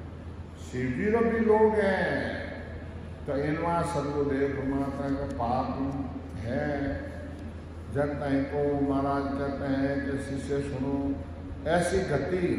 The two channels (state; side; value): identical; both; correlation 1.00